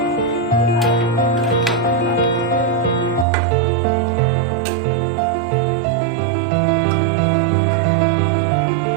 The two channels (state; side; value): drops out; left; at 3.2 s